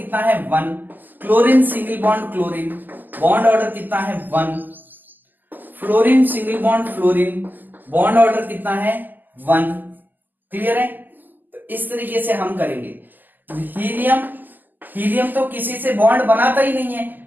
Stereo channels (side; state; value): left; late; 0.087 ms